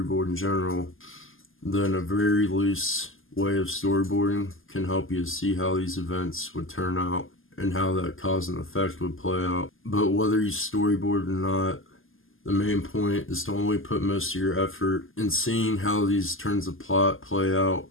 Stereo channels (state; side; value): late; right; 0.59 ms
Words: in general, then a very loose way of storyboarding can help you to see how these events would turn out and how that cause and effect would play out. But whether you storyboard or not, the main point is to only put most of your effort in seeing how these turns of plot play out